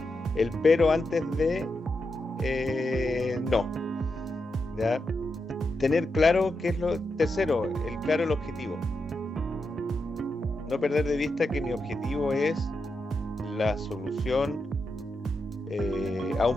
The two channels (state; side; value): normal; both; correlation 0.86